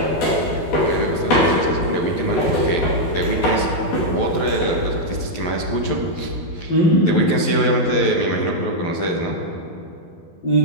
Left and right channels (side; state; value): right; late; 12 ms